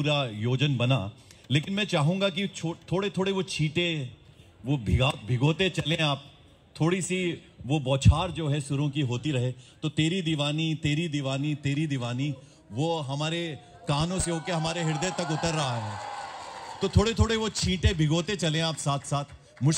योजन बना, लेकिन मैं चाहूंगा कि थोड़े थोड़े वो छींटे वो भिगोते चलें आप, थोड़ी सी वो बौछार जो है सुरों की होती रहे, तो तेरी दीवानी तेरी दीवानी तेरी दीवानी वो हमारे कानों से होके हमारे हृदय तक उतर रहा है। तो थोड़े थोड़े वो छींटे भिगोते चलें आप साथ साथ।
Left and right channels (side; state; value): both; identical; correlation 1.00